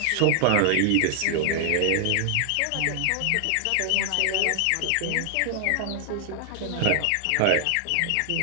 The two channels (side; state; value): both; different; correlation 0.00